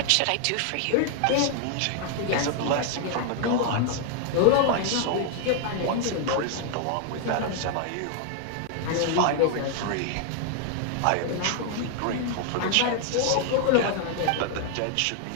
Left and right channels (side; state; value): both; different; correlation 0.00